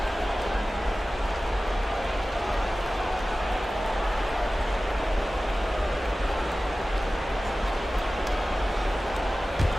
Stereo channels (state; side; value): normal; both; correlation 0.96